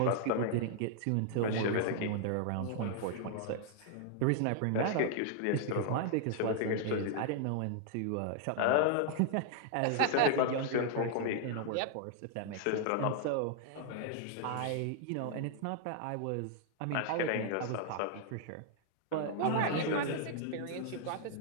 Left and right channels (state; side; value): different; both; correlation 0.00